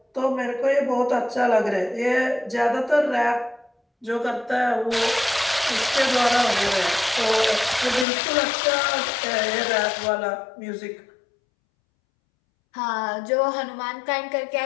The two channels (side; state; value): right; drops out; at 8.1 s